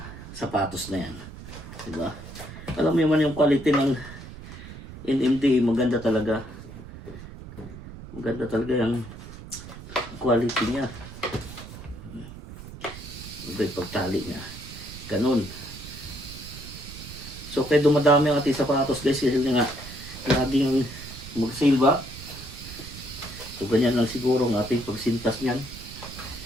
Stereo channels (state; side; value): noise; right; rumble, 13 dB below the sound